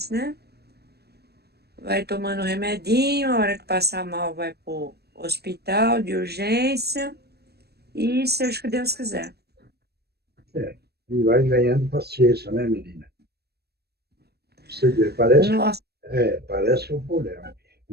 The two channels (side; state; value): left; late; 0.47 ms